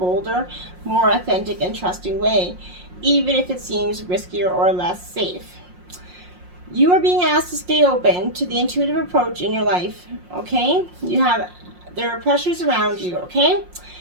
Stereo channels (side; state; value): left; late; 5.6 ms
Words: more authentic and trusting way, even if it seems riskier or less safe. You are being asked to stay open to the intuitive approach in your life, okay? There are pressures around you, okay?